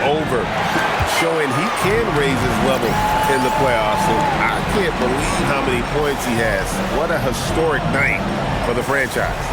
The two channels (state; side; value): identical; both; correlation 1.00